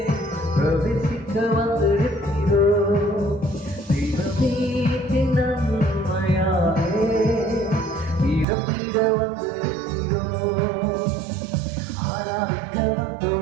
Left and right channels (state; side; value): drops out; left; at 8.5 s